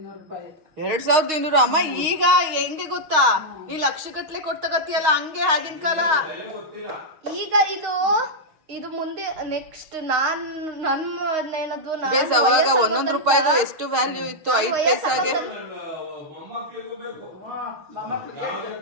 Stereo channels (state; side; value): late; left; 6.4 ms